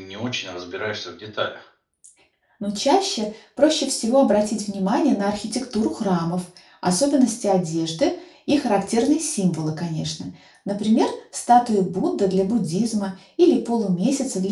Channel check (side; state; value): both; identical; correlation 1.00